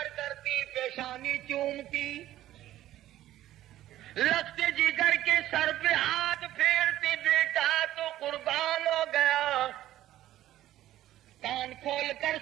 کرتی پیشانی چومتی لگتے جگر کے سر پہ ہاتھ پھیرتی بیٹا تو قربان ہو گیا. کان کھول کر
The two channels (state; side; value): quieter; left; 13.8 dB